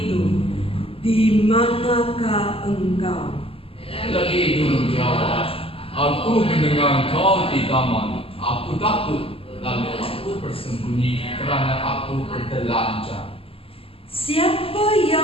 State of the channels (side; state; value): right; late; 0.27 ms